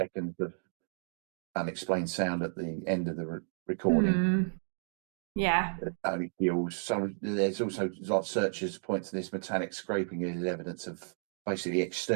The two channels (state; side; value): silent; left; digital silence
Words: of unexplained sound at the end of the recording. Yeah. Only feels. There's also like searchers point to this metallic scraping as evidence of basically